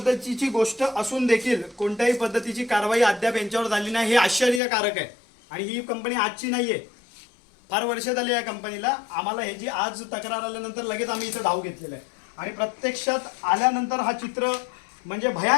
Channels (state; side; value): drops out; right; at 4.6 s